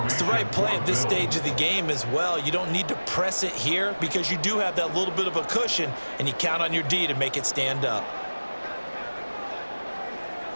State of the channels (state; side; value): inverted; both; correlation -1.00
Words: It's the right play at this stage of the game as well. You don't need to press it here because you do have that little bit of a cushion, and you count on your D to make it stand up.